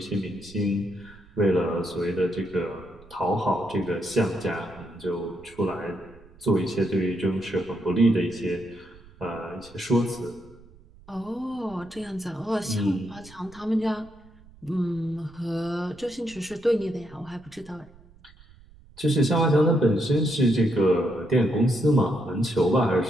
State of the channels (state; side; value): noise; right; rumble, 24 dB below the sound